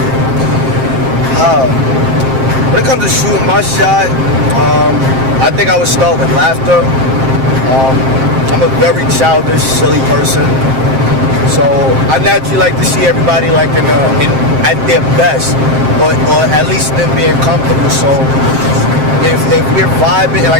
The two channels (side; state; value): left; late; 7.6 ms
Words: When it comes to shooting my shot, I think I would start with laughter. I'm a very childish, silly person, so I naturally like to see everybody like at their best, or at least them being comfortable. So if we're vibing,